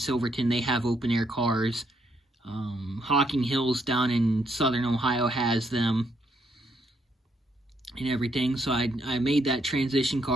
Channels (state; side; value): normal; both; correlation 0.74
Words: they have open air cars. Hocking Hills down in southern Ohio has them and everything. So I made that transition